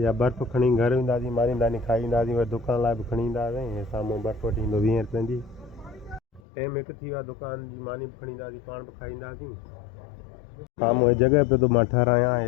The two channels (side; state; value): right; drops out; at 6.4 s